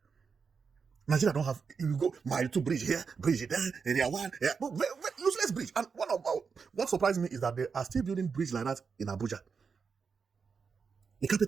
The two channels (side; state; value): left; quieter; 5.6 dB